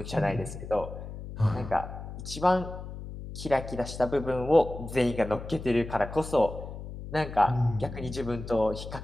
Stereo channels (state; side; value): noise; left; hum, 10 dB below the sound